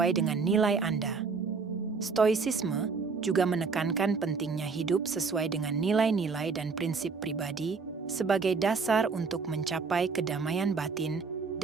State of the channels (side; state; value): left; quieter; 4.9 dB